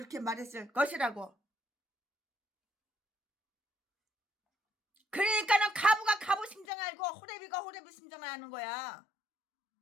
말했을 것이라고. 그러니까는 가부가 가부 심정을 알고 호레비가 호레비 심정을 아는 거야.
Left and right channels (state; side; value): drops out; right; at 6.7 s